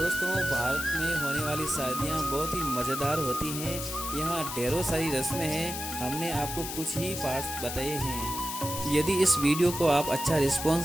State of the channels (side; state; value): left; noise; hiss, 6 dB below the sound